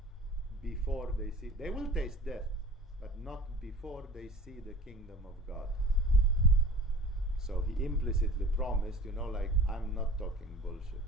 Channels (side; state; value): both; normal; correlation 0.41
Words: before they see. They will taste death, but not before they see the kingdom of God. So he implicitly promised, like, I'm not talking bullshit.